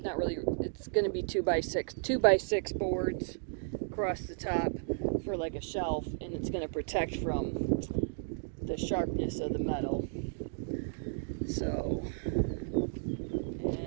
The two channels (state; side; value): silent; left; digital silence